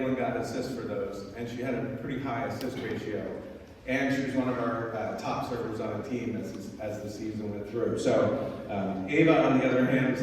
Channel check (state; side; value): identical; both; correlation 1.00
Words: got assists for those, and she had a pretty high assist ratio. And she was one of our top servers on the team as the season went through. So Ava, on the other hand, was